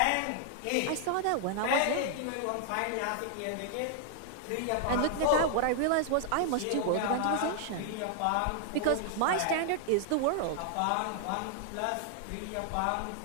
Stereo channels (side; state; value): both; different; correlation 0.00